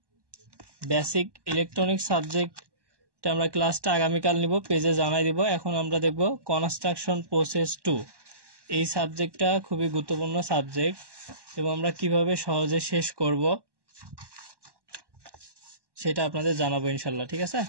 বেসিক ইলেকট্রনিক্স সাবজেক্ট আমরা ক্লাসটা আগামীকাল নিব, পেজে জানাই দিব। এখন আমরা দেখব কনস্ট্রাকশন প্রসেস 2। এই সাবজেক্টটা খুবই গুরুত্বপূর্ণ সাবজেক্ট, এবং আমরা কিভাবে সহজে শেষ করব সেটা আপনাদের জানাবো ইনশাল্লাহ, ঠিক আছে?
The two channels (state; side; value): late; left; 1.1 ms